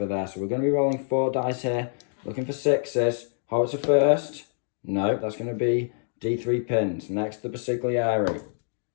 there. So we're going to be rolling 4 dice here, looking for 6s. Howitzer first. No, that's going to be D3 pins. Next, the Basiglieri.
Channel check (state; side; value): silent; right; digital silence